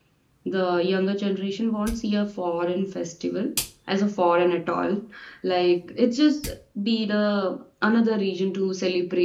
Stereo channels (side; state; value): both; identical; correlation 1.00